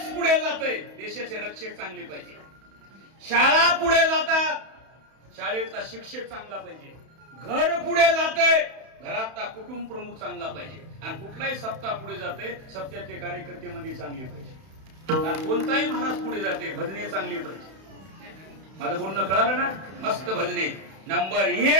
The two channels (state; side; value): late; left; 31 ms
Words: पुढे जातोय, देशाचे रक्षक चांगली पाहिजे. शाळा पुढे जातात, शाळेतला शिक्षक चांगला पाहिजे. घर पुढे जातंय, घरातला कुटुंब प्रमुख चांगला पाहिजे. आणि कुठलाही सप्ताह पुढे जाते, सप्त्यातले कार्यकर्ते मध्ये चांगले पाहिजे. आणि कोणताही महाराज पुढे जाते, भजने चांगली पाहिजे. माझं बोलणं कळालं ना? मस्त भजने. नंबर